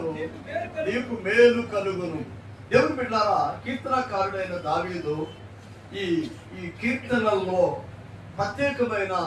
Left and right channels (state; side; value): identical; both; correlation 1.00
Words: నీకు మేలు కలుగును. దేవుని బిడ్డలారా, కీర్తనకారుడైన దావీదు ఈ కీర్తనల్లో ప్రత్యేకమైన